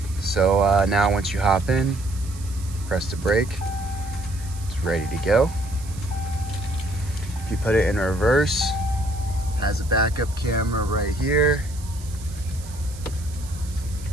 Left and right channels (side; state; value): right; noise; hiss, 18 dB below the sound